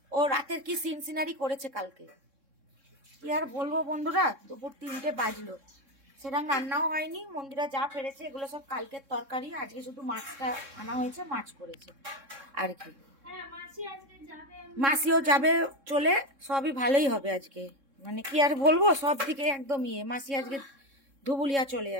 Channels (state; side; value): late; left; 3.6 ms